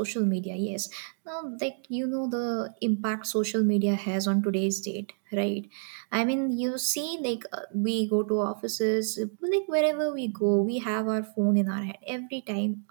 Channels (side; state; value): left; silent; digital silence